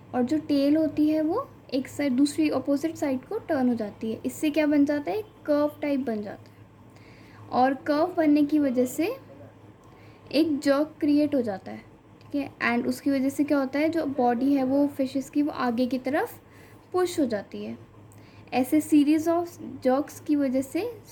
और जो टेल होती है वो एक साइड, दूसरी अपोजिट साइड को टर्न हो जाती है. इससे क्या बन जाता है, कर्व टाइप बन जाता है. और कर्व बनने की वजह से एक जर्क क्रिएट हो जाता है. ठीक है, एंड उसकी वजह से क्या होता है, जो बॉडी है वो फिशेस की वो आगे की तरफ पुश हो जाती है. ऐसे सीरीज़ ऑफ जर्क्स की वजह से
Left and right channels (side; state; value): both; identical; correlation 1.00